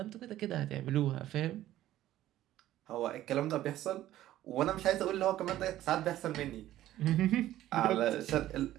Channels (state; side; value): quieter; left; 13.9 dB